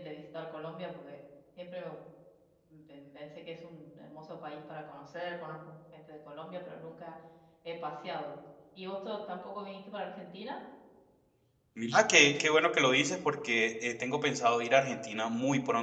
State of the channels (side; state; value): both; identical; correlation 1.00